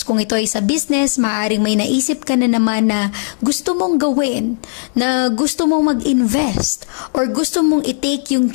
Kung ito ay sa business, maaaring may naisip ka na naman na gusto mong gawin, na gusto mong mag-invest, or gusto mong i-take yung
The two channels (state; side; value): silent; right; digital silence